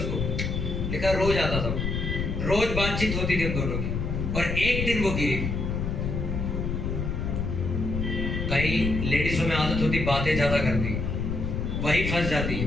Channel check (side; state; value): left; noise; rumble, 2 dB below the sound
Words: लिखा रोज आता था, रोज बातचीत होती थी उन दोनों की, और एक दिन वो गिरी। कई लेडीजों में आदत होती बातें ज्यादा करती, वही फंस जाती है।